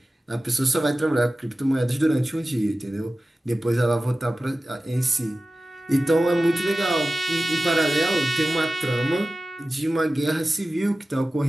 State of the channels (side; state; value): both; normal; correlation 0.95